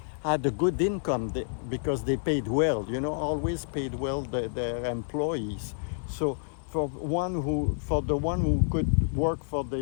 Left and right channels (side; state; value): right; silent; 59 dB below the other